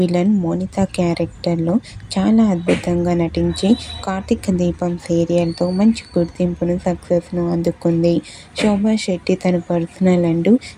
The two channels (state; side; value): identical; both; correlation 1.00